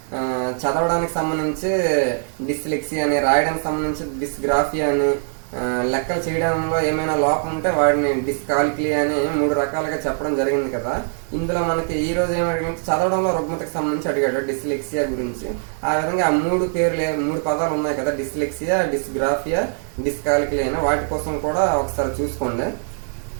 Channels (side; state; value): left; silent; 61 dB below the other